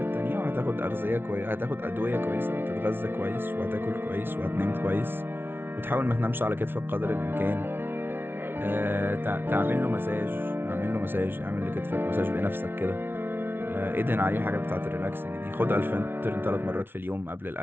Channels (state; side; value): late; left; 0.11 ms